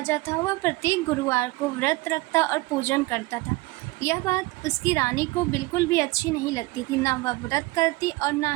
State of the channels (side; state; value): left; quieter; 22.0 dB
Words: था। वह प्रत्येक गुरुवार को व्रत रखता और पूजन करता था। यह बात उसकी रानी को बिल्कुल भी अच्छी नहीं लगती थी। न वह व्रत करती और न